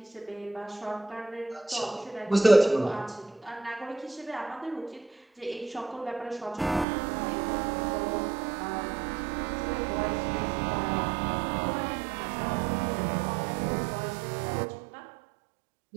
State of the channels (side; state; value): left; drops out; at 6.9 s